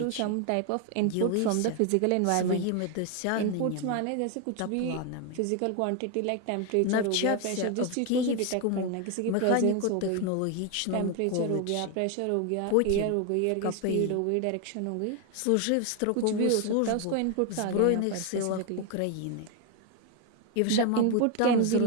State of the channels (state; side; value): different; both; correlation 0.01